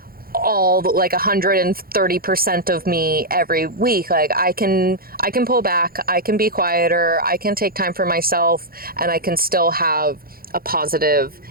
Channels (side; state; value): left; late; 0.43 ms